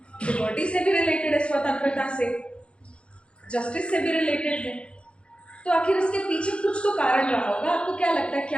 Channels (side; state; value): right; late; 0.058 ms